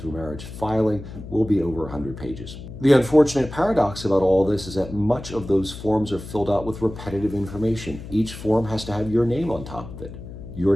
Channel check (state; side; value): noise; left; hum, 12 dB below the sound